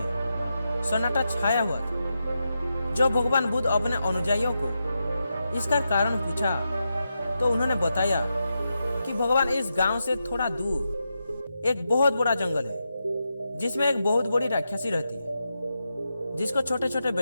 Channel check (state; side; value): inverted; both; correlation -0.87